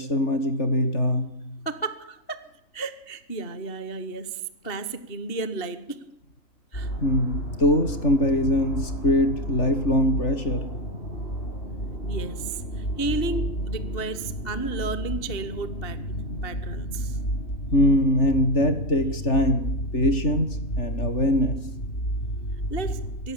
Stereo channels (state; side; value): late; right; 2.8 ms